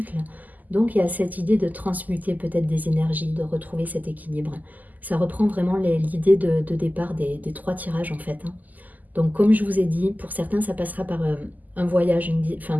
Donc, il y a cette idée de transmuter peut-être des énergies, de retrouver cet équilibre. Ça reprend vraiment l'idée de départ des trois tirages en fait, hein. Donc, comme je vous ai dit, pour certains, ça passera par un voyage, enfin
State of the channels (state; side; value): late; left; 0.082 ms